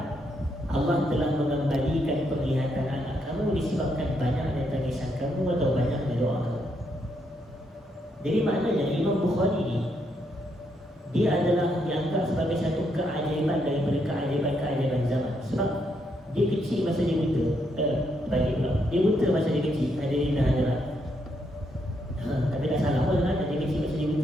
Allah telah mengembalikan penglihatan anak kamu disebabkan banyaknya tangisan kamu atau banyaknya doa kamu. Jadi maknanya Imam Bukhari ni dia adalah dianggap sebagai satu keajaiban daripada keajaiban zaman. Sebab dia kecil masa dia buta. Dia buta masa dia kecil. Hadirin dan hadirat. Tapi tak salah pun kan, dia kecil masa dia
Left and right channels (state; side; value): normal; both; correlation 0.77